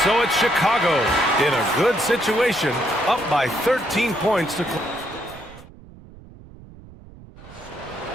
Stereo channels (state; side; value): noise; right; rumble, 20 dB below the sound